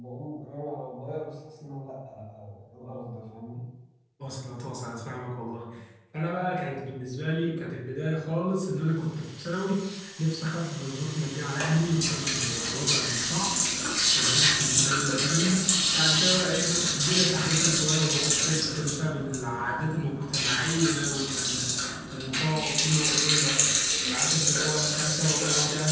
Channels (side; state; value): both; identical; correlation 1.00